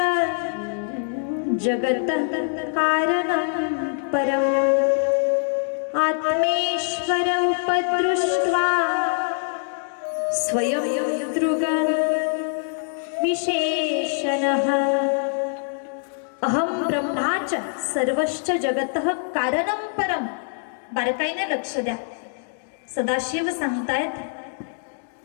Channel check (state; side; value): silent; right; digital silence